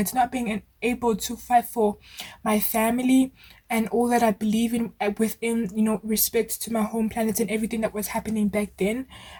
not being able to fight for my family and all that I believe in, within respect to my home planet and everything that was happening back then,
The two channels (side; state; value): both; identical; correlation 1.00